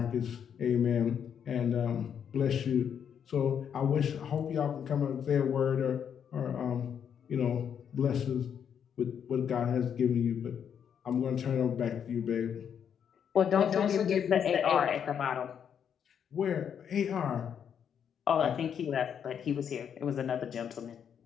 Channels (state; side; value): quieter; right; 8.1 dB